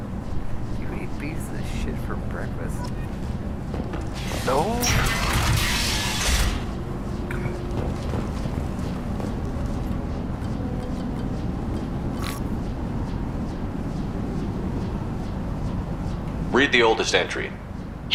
You eat pieces of shit for breakfast? Read the oldest entry.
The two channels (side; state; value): both; identical; correlation 1.00